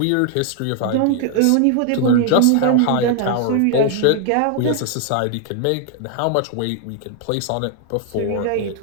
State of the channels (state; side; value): different; both; correlation 0.00